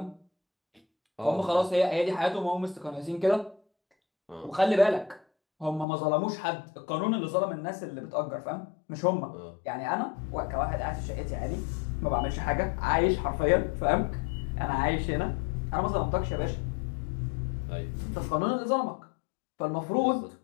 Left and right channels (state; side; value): drops out; right; at 5.9 s